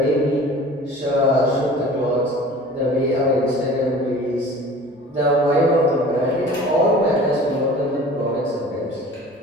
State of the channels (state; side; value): normal; both; correlation 0.43